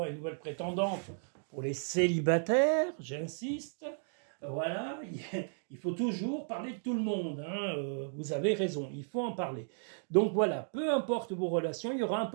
et nouvelle prétendante. Pour les célibataires, j'insiste, voilà, il faut toujours parler de tout le monde, hein, vous avez raison, il faut en parler. Donc voilà, peu importe vos relations, il y aura un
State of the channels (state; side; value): silent; left; digital silence